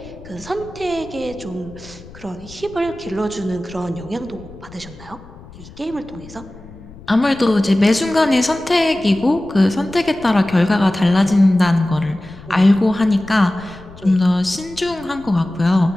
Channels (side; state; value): left; noise; rumble, 19 dB below the sound